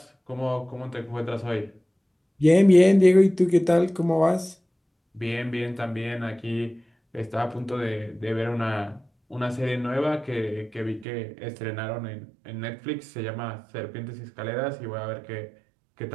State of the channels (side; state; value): left; drops out; at 11.1 s